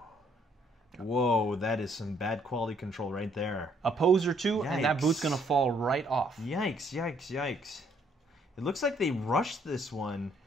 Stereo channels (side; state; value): both; normal; correlation 0.67